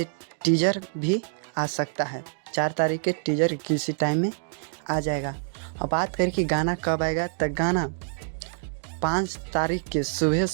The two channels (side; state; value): left; silent; digital silence